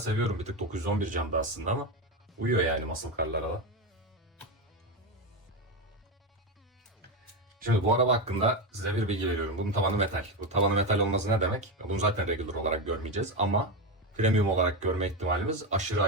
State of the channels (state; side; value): normal; both; correlation 0.13